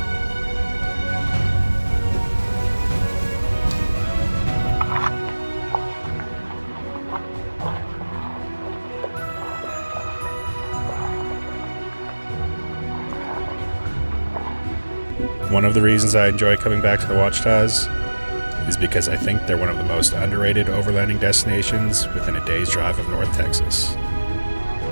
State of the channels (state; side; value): inverted; both; correlation -1.00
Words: One of the reasons I enjoy coming back to the Ouachitas is because I think they're one of the most underrated overlanding destinations within a day's drive of North Texas.